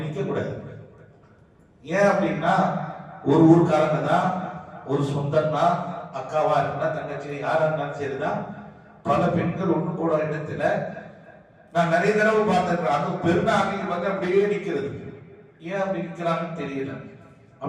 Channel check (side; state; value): both; identical; correlation 1.00